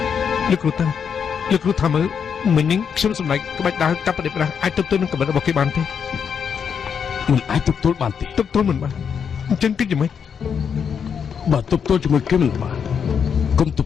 លោកគ្រូតាលោកគ្រូថាមើលមិញនេះខ្ញុំសម្ដែងក្បាច់ដើរកាប់ប្រដេប្រាស់អាចទប់ទល់នឹងកម្រិតរបស់គេបានទេ មិនអាចទប់ទល់បានទេ ទប់ទល់មិនបានអញ្ចឹងគិតយ៉ាងម៉េច បើទប់ទល់ជាមួយគេមិនបានកុំទ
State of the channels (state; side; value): quieter; right; 7.1 dB